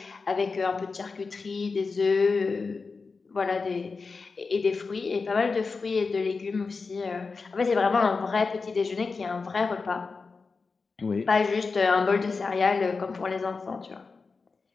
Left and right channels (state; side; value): quieter; right; 4.5 dB